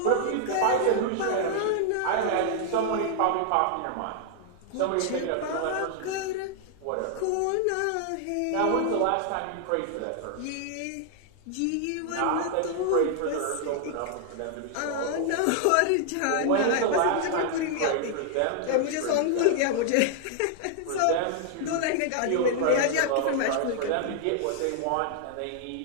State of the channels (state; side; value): different; both; correlation 0.00